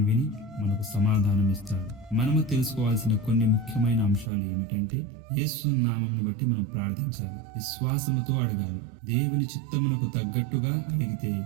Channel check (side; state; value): left; drops out; at 4.3 s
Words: విని మనకు సమాధానం ఇస్తాడు. మనము తెలుసుకోవాల్సిన కొన్ని ముఖ్యమైన అంశాలు ఏమిటంటే, యేసు నామమును బట్టి మనం ప్రార్థించాలి, విశ్వాసముతో అడగాలి, దేవుని చిత్తమునకు తగ్గట్టుగా అడిగితే